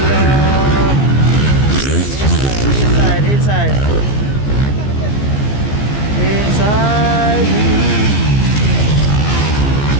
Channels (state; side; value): late; right; 15 ms